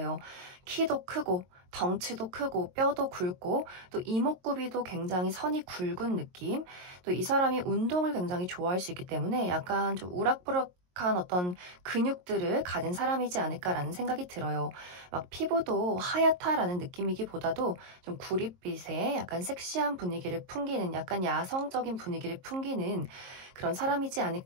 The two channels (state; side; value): late; left; 22 ms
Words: 키도 크고 덩치도 크고 뼈도 굵고 또 이목구비도 굉장히 선이 굵은 느낌 또 이 사람이 운동을 굉장히 좋아할 수 있기 때문에 약간 좀 우락부락 어떤 근육들을 가진 사람이지 않을까라는 생각이 들어요. 막 피부도 하얗다라는 느낌이기보다도 좀 구릿빛의 약간 섹시한 분위기를 풍기는 약간 야성적인 분위기를 풍기는 그런 사람이지